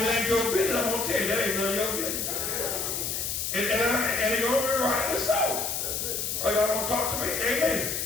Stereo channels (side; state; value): left; noise; hiss, 2 dB below the sound